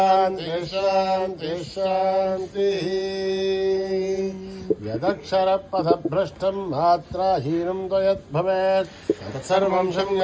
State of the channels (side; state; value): both; identical; correlation 1.00